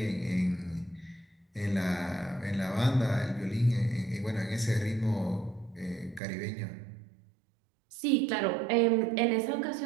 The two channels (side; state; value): left; drops out; at 6.2 s